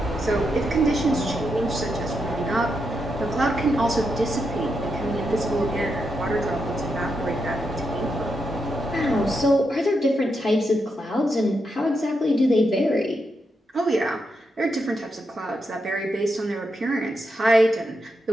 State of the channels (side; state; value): both; normal; correlation 0.84